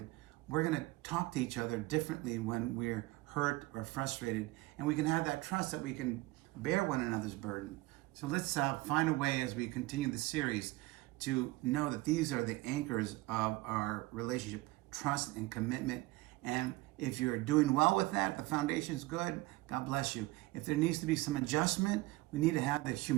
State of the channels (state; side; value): quieter; left; 20.7 dB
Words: we're going to talk to each other differently when we're hurt or frustrated, and we can have that trust that we can bear one another's burden. So let's find a way as we continue the series to know that these are the anchors of our relationship, trust and commitment. And if you're doing well with that, the foundation's good, God bless you. If there needs to be some adjustment, we need to have the